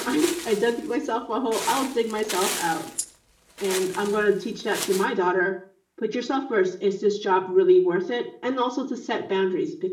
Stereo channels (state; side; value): identical; both; correlation 1.00